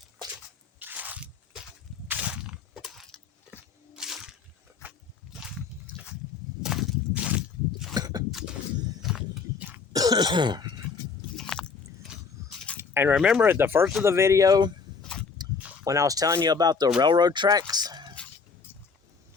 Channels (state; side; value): quieter; right; 5.3 dB